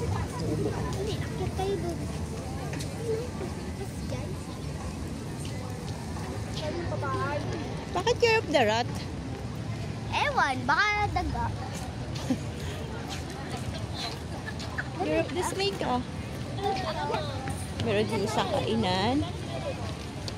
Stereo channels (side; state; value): both; identical; correlation 1.00